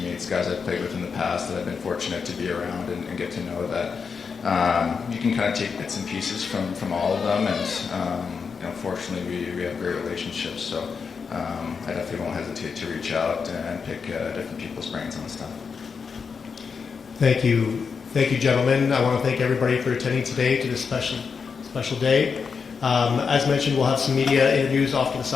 guys I've played with in the past that I've been fortunate to be around and get to know that you can kind of take bits and pieces from all of them, and fortunately we have great relationships. So I definitely won't hesitate to reach out and pick different people's brains on stuff. Thank you, gentlemen. I want to thank everybody for attending today to this special day. As mentioned, we'll have some media interviews off to the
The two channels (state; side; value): quieter; right; 5.7 dB